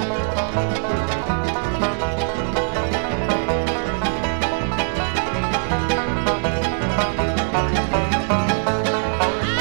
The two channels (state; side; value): silent; left; 65 dB below the other